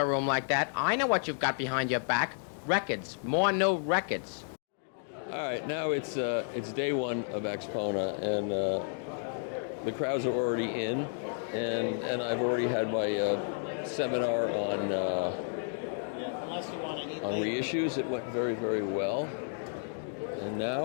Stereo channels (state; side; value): silent; right; digital silence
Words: room like that. I know what you've got behind your back. Records. More new records. All right, now it's day one of Axpona, and the crowds are already in, and I've already had my seminar on reissues. It went very, very well, and